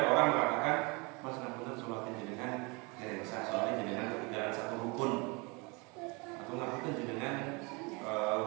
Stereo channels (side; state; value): left; quieter; 28.9 dB